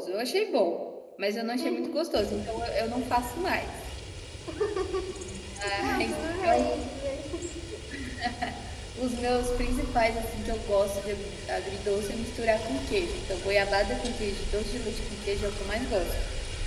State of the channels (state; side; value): identical; both; correlation 1.00